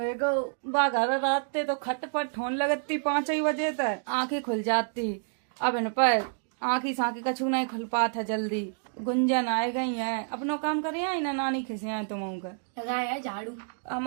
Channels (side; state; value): left; silent; digital silence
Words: बाघर रात तो खटपट होने लगती 5 बजे तक, आंखें खुल जाती। अब इन पर आंखी साँखी कछू नहीं खुल पाता जल्दी। गुंजन आए गई है, अपनो काम करे आई ना नानी खिसिया तुम लगाया झाड़ू।